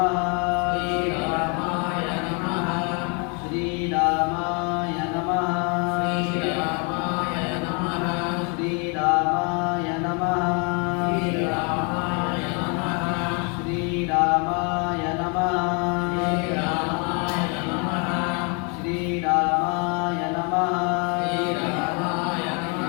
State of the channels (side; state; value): right; quieter; 34.7 dB